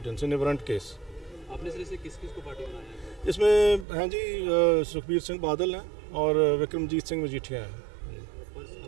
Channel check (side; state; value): left; drops out; at 3.9 s